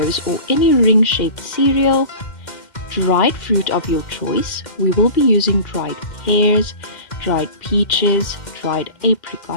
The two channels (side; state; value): right; late; 2.1 ms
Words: or any ring-shaped cereal, dried fruit of your choice. We will be using dried pears, dried peaches, dried